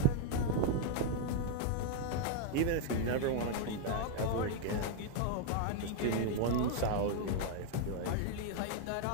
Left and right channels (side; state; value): both; different; correlation 0.00